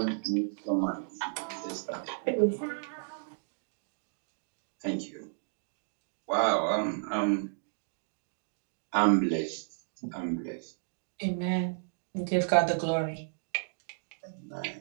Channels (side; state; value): left; silent; digital silence